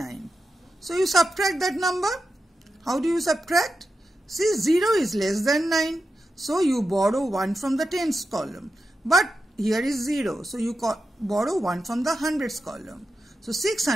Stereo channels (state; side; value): normal; both; correlation 0.89